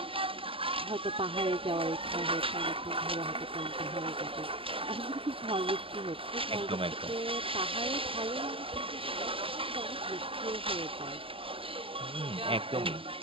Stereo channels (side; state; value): left; late; 0.26 ms